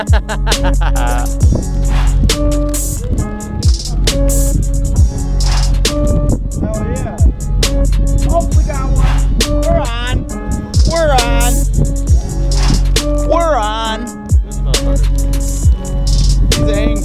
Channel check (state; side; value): identical; both; correlation 1.00